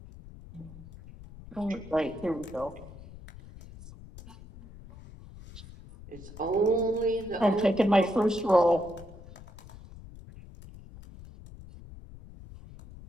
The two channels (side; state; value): left; noise; rumble, 17 dB below the sound